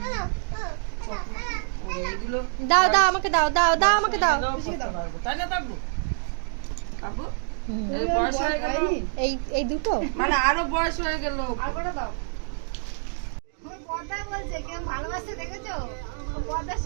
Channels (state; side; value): silent; left; digital silence